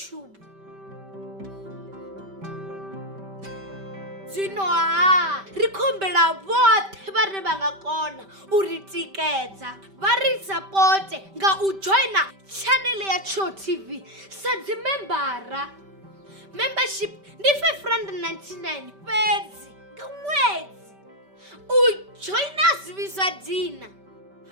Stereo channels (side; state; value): left; late; 5.1 ms